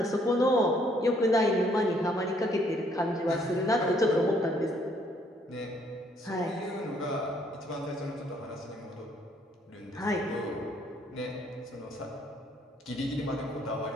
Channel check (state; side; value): normal; both; correlation 0.66